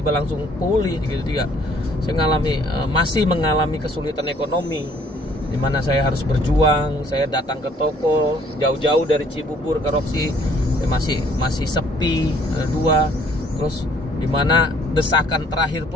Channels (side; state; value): both; normal; correlation 0.60